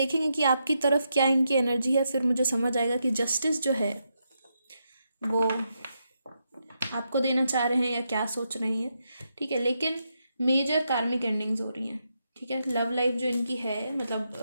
कि आपकी तरफ क्या इनकी एनर्जी है, फिर मुझे समझ आएगा कि जस्टिस जो है वो आपको देना चाह रहे हैं या क्या सोच रहे हैं, ठीक है। लेकिन मेजर कार्मिक एंडिंग्स हो रही हैं, ठीक है। लव लाइफ जो इनकी है,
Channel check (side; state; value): both; inverted; correlation -0.83